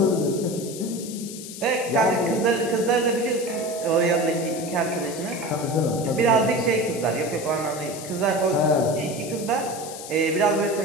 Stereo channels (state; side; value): noise; left; hiss, 12 dB below the sound